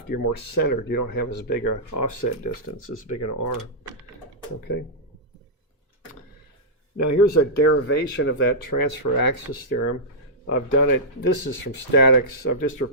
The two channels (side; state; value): both; normal; correlation -0.12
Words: you're more centered. You don't have as big an offset distance, as big an R. Okay. Now here's a derivation of that transfer axis theorem. I've done it, this is from statics. I've just